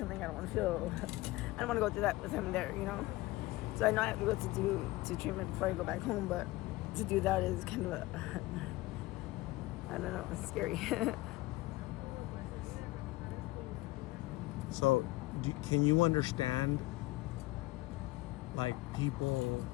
I don't want to go through that with him there, you know. So I know I have to go to treatment before I go back home, but to do that is kind of I don't know, it's scary. So, can you understand, like, people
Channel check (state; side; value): quieter; right; 19.4 dB